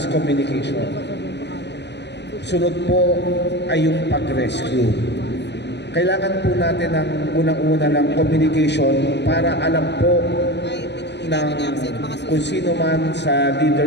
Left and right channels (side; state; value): right; late; 0.50 ms